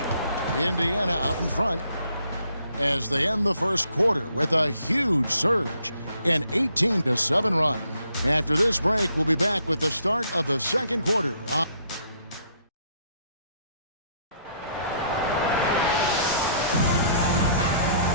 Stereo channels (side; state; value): both; inverted; correlation -0.67